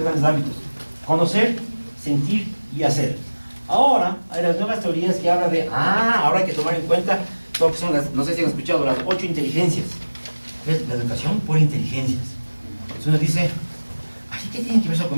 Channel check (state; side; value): inverted; both; correlation -1.00